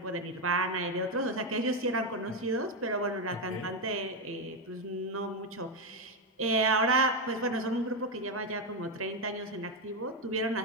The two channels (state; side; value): normal; both; correlation 0.07